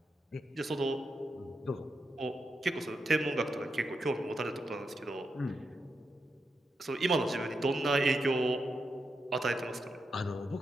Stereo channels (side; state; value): both; normal; correlation 0.85